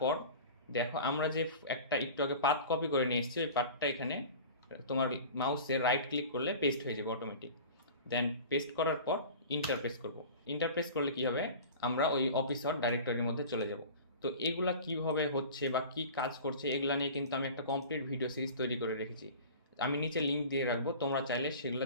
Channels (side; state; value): both; inverted; correlation -0.38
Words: দেখো আমরা যে একটা একটু আগে পাথ কপি করে নিয়ে এসেছি ওই পাথটা এখানে তোমার মাউসে রাইট ক্লিক করলে পেস্ট হয়ে যাবে অটোমেটিক। দেন পেস্ট করার পর ইন্টার প্রেস করব। ইন্টার প্রেস করলে কী হবে, আমরা ওই অফিসার ডাইরেক্টরির মধ্যে চলে যাব। তো এগুলা কিভাবে হচ্ছে বা কি কাজ করছে এগুলা নিয়ে কিন্তু আমি একটা কমপ্লিট ভিডিও সিরিজ তৈরি করে রেখেছি। আমি নিচে লিঙ্ক দিয়ে রাখবো, তোমরা চাইলে সেগুলো